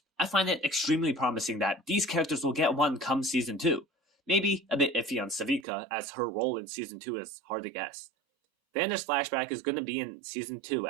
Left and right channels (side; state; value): left; drops out; at 5.7 s